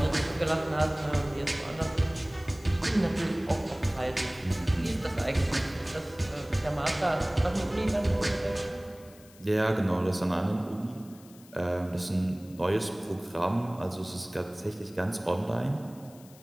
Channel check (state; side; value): noise; left; hiss, 24 dB below the sound